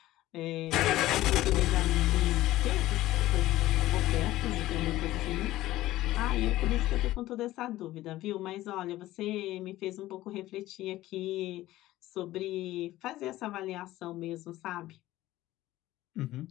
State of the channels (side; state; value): right; quieter; 16.0 dB